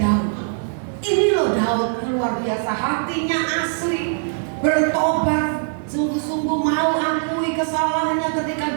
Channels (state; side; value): silent; left; digital silence